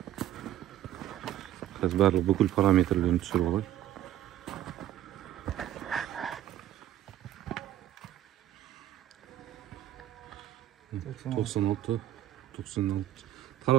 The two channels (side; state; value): left; quieter; 12.5 dB